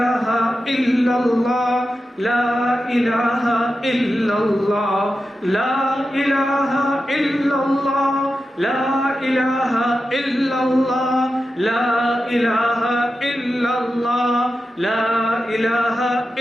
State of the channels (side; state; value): both; normal; correlation 0.91